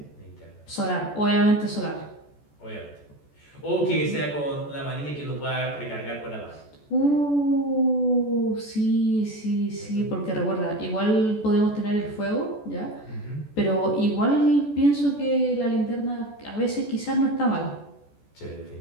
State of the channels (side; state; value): right; late; 14 ms